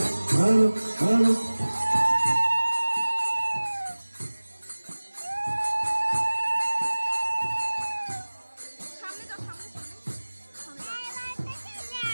হরে হরে সামনে যাও, সামনে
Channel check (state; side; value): inverted; both; correlation -1.00